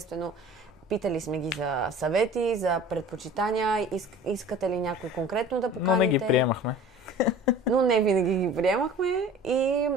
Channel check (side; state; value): both; normal; correlation 0.43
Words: питали сме ги за съвети, за предпочитания, искате ли някой конкретно да поканите. Но не ги приемахме. Но не винаги ги приемахме